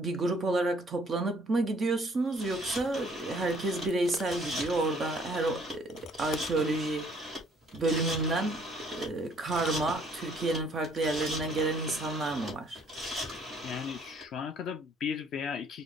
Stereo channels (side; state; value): both; normal; correlation 0.61